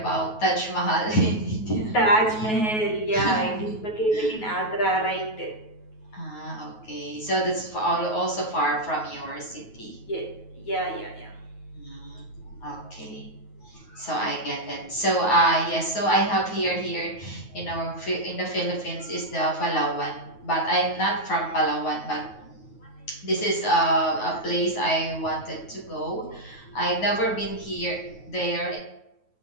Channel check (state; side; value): late; right; 9.3 ms